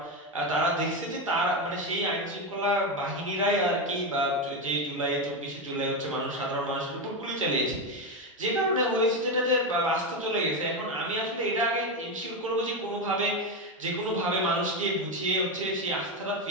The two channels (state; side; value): normal; both; correlation 0.12